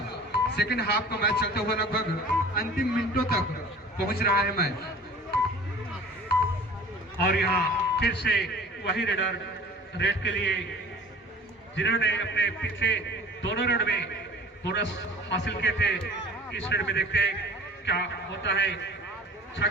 सेकंड हाफ का मैच चलता हुआ लगभग अंतिम मिनटों तक पहुंच रहा है मैच। और यहाँ फिर से वही रेडर रेड के लिए जिन्होंने अपने पिछले दोनों रेड में बोनस हासिल किए थे, इस रेड में देखते हैं क्या होता है। 6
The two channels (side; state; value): both; normal; correlation 0.44